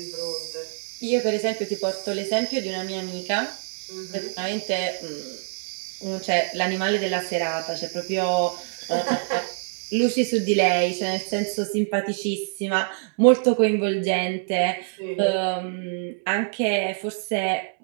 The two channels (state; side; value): silent; left; digital silence